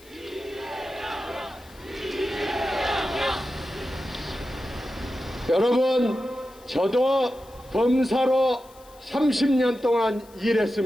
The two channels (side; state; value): left; noise; hiss, 25 dB below the sound